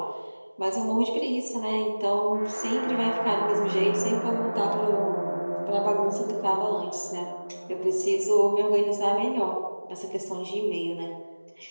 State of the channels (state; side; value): inverted; both; correlation -1.00